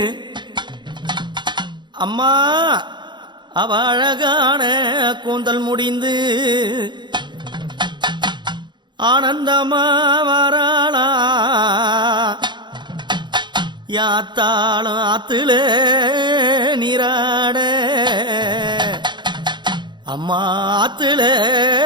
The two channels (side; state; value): left; late; 0.22 ms